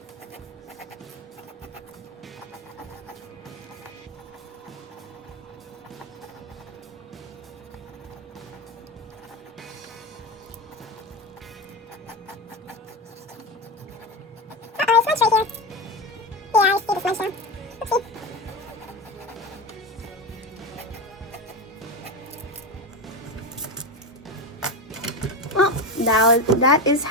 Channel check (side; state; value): both; normal; correlation 0.19